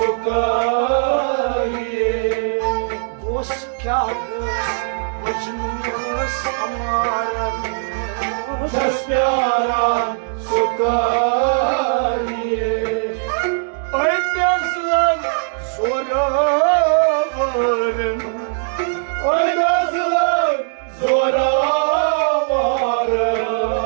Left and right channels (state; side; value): silent; left; digital silence